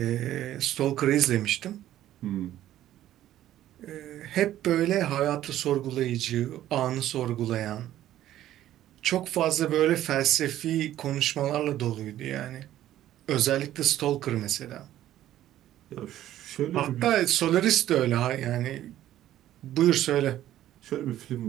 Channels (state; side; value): quieter; left; 13.0 dB